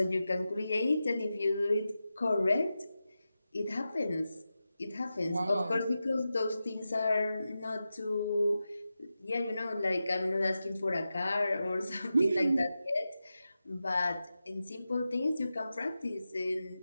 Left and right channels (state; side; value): inverted; both; correlation -0.92